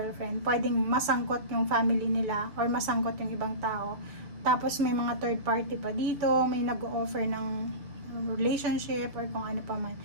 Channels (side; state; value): left; late; 6.9 ms